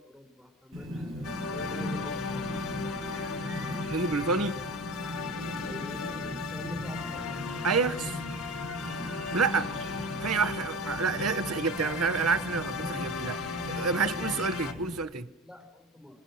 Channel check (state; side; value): normal; both; correlation 0.32